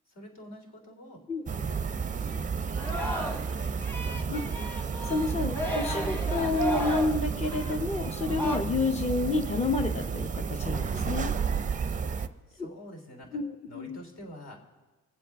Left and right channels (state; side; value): normal; both; correlation 0.54